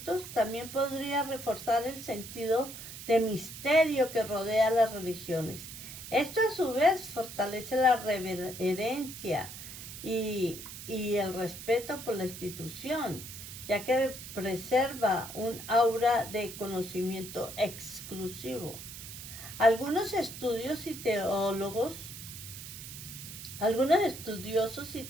también podría reforzar el sentido de misterio que rodea las religiones. Esto a su vez fortalece la reverencia y el respeto por la institución, ya que preserva un aura de conocimiento exclusivo. Algunos estudiosos y teólogos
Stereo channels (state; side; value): noise; right; hiss, 11 dB below the sound